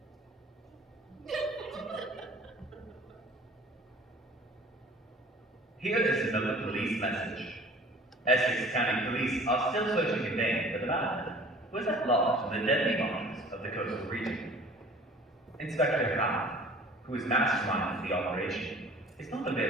Here is another police message. Essex County Police are still searching in vain for the man who is at large in the deadly marshes of the coastal region. Inspector Hound, who is mastermind of the operation, is not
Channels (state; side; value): normal; both; correlation 0.47